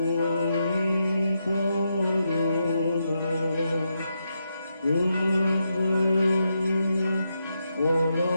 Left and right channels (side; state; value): both; inverted; correlation -0.83